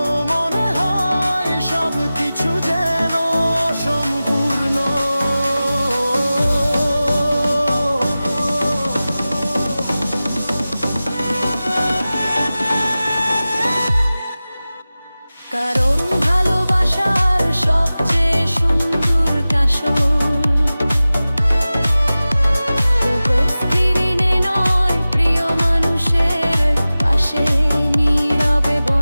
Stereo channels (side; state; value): both; inverted; correlation -0.96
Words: মনে হয় সব কিছু যেন অসম্পূর্ণ। কারণ ভালোবাসার সবচেয়ে সুন্দর কাশন স্ক্রিনে নয়, প্রিয় মানুষের পাশে নীরবে